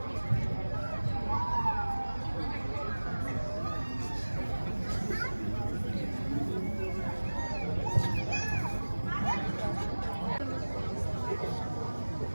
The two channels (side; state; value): both; inverted; correlation -1.00